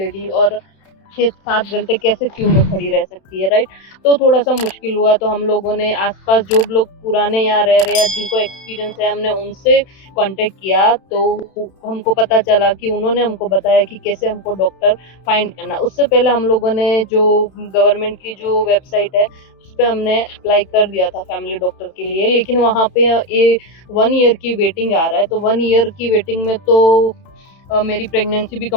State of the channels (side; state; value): right; late; 31 ms